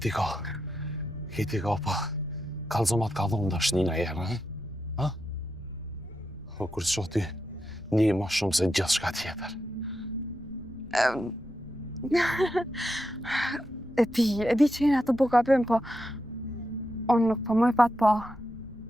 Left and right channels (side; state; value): both; normal; correlation 0.86